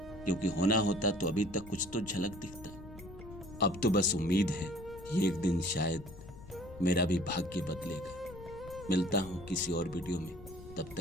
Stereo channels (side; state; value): left; noise; rumble, 16 dB below the sound